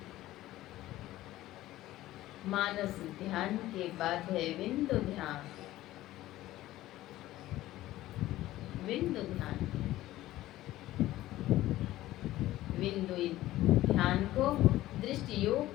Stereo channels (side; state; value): right; quieter; 15.6 dB